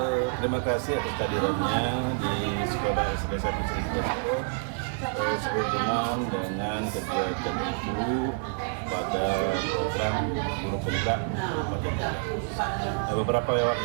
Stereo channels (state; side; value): silent; left; 59 dB below the other